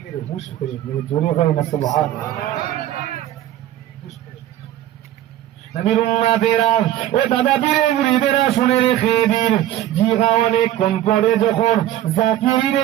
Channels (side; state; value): left; quieter; 12.8 dB